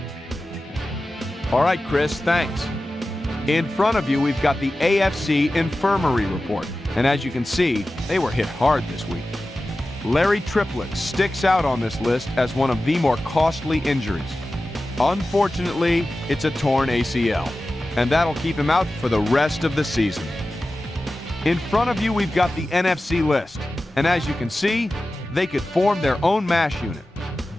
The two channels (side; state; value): both; normal; correlation 0.95